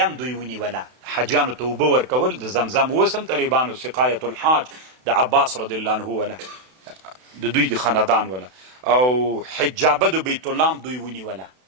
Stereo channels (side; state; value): left; late; 32 ms